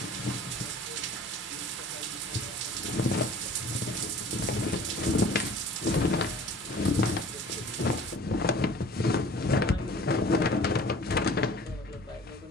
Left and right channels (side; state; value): both; normal; correlation 0.46